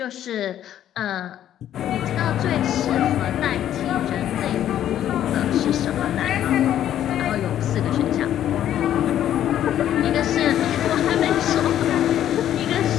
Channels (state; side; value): quieter; right; 11.2 dB